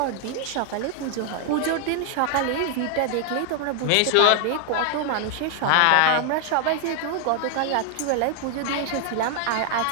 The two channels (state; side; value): different; both; correlation 0.00